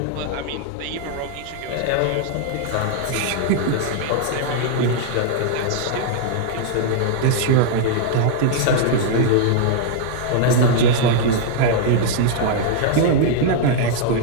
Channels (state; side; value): different; both; correlation -0.01